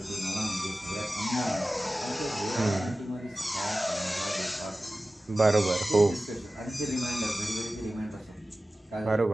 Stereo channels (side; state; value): both; normal; correlation 0.96